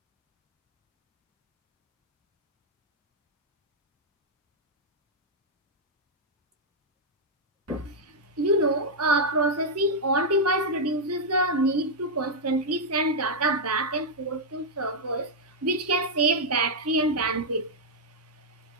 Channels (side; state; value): both; normal; correlation -0.03